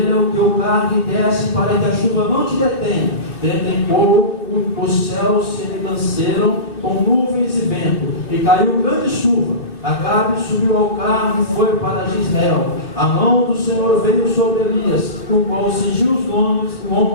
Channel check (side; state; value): right; late; 2.6 ms